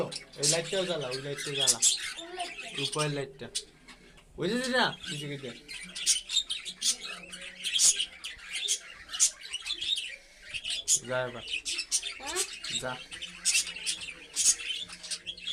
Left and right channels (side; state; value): both; identical; correlation 1.00